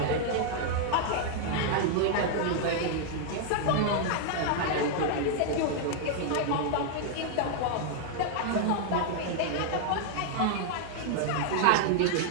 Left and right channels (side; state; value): both; different; correlation -0.01